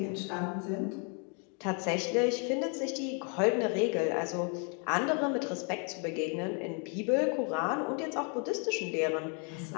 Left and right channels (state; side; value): quieter; right; 38.4 dB